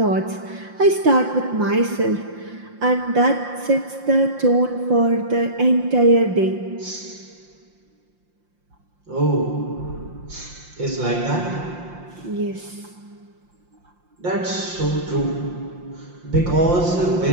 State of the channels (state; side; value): late; left; 5.7 ms